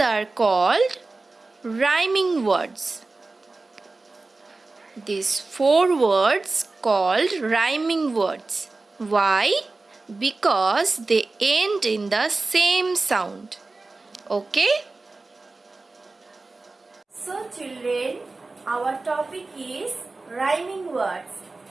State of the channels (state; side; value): quieter; left; 3.5 dB